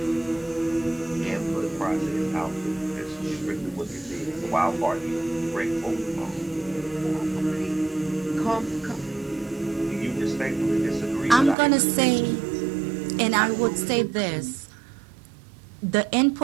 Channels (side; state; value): left; drops out; at 11.6 s